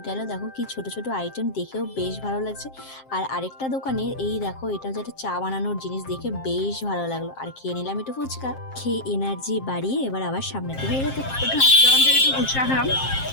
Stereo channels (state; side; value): late; right; 7.5 ms